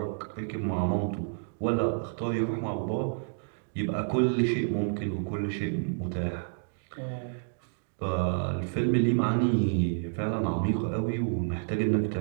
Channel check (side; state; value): left; silent; digital silence